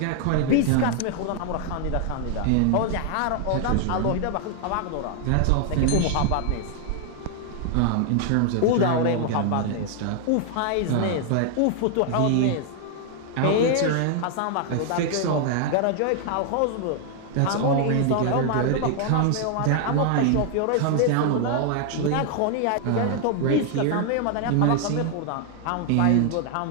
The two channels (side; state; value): both; different; correlation 0.00